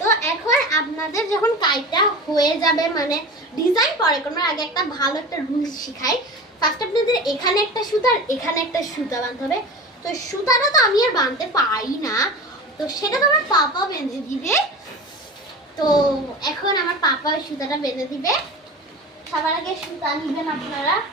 এখন আপনাদের যখন কাইটটা হয়ে যাবে, মানে ডিজাইন পরে করার আগে একটা ভালো একটা রুলস শিখাই। ফার্স্ট আপনাদের এখানে একটা সুতা আর এখানে একটা সুতা বাঁধতে হবে। তো সুতাটা তো আমি আর বাঁধতে পারি না, তো সেটা তো আমার পাপা বেঁধে দিবে। তো এখন আমার পাপা ওই সুতাটা বেঁধে দিবে। সবার আগে সুতা নিবেন আপনারা।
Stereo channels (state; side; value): normal; both; correlation 0.32